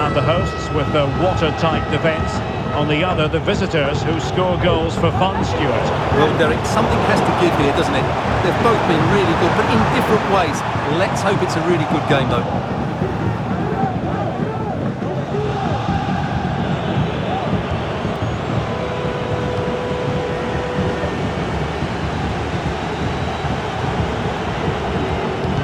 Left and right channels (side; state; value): both; identical; correlation 1.00